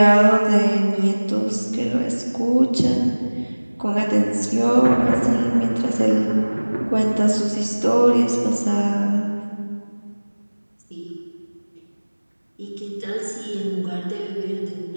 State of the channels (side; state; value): both; inverted; correlation -1.00